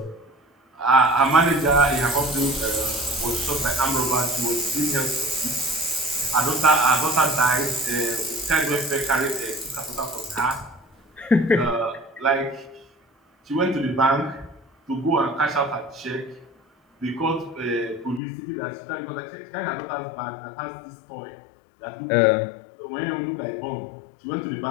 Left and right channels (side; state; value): right; drops out; at 18.2 s